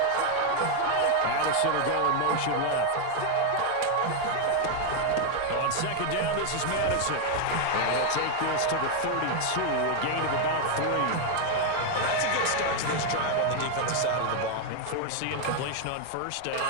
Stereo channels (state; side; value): different; both; correlation 0.01